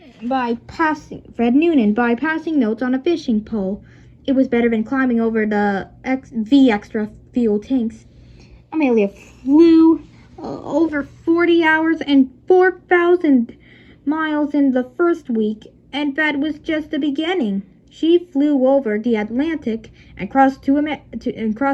by passing notes on a fishing pole. It was better than climbing over the extra fuel tanks. Amelia flew over 40 hours and 4,000 miles in the first week, and that was just the beginning. She flew over the Atlantic and crossed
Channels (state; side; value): identical; both; correlation 1.00